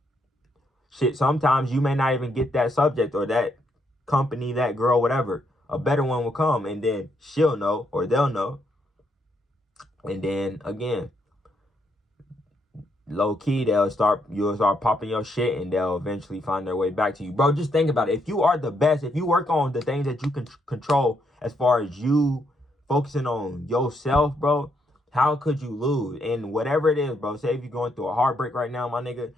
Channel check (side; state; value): both; normal; correlation 0.76